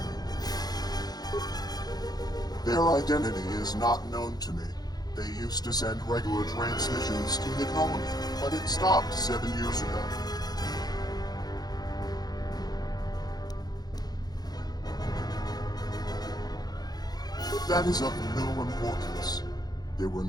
Their identity is not known to me. They used to send regular transmissions to the colony, but it stopped 7 years ago. That is of no importance. They were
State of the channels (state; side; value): late; right; 0.19 ms